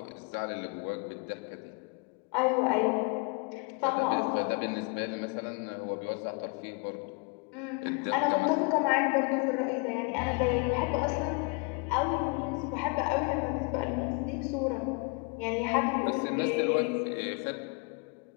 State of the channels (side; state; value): right; quieter; 31.5 dB